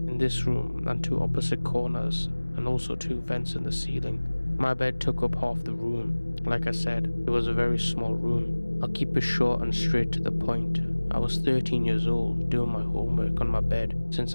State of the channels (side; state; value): both; inverted; correlation -1.00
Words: in this room and 2 opposite corners, and also 2 vents in the ceiling. My bed took up half the room. Like I said, it was a very small room. I'll keep it short and straight to the point. I was 13 years old, doing my homework on my bed